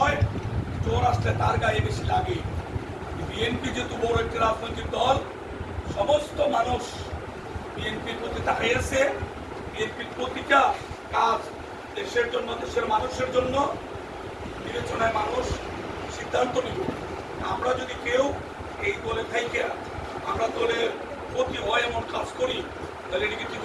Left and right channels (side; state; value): both; identical; correlation 1.00